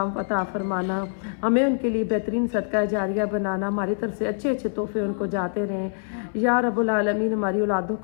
عطا فرمانا. ہمیں ان کے لیے بہترین صدقہ جاریہ بنانا, ہماری طرف سے اچھے اچھے تحفے ان کو جاتے رہیں. یا رب العالمین ہماری اولادوں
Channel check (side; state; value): right; silent; 57 dB below the other